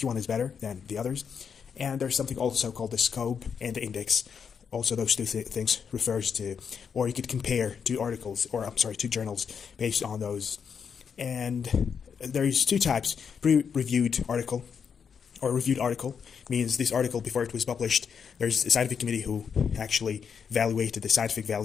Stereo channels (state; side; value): quieter; right; 6.7 dB